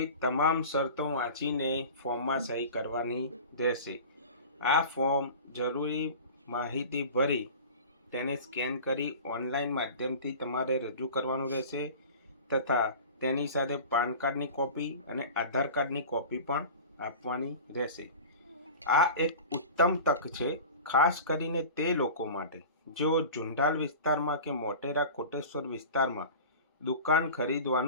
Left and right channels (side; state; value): both; inverted; correlation -0.36